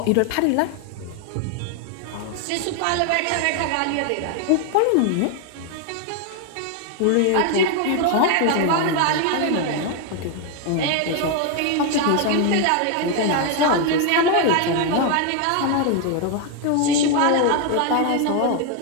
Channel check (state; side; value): different; both; correlation 0.00